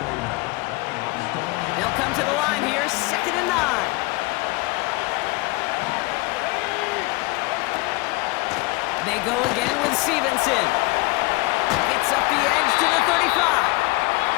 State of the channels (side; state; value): right; quieter; 23.8 dB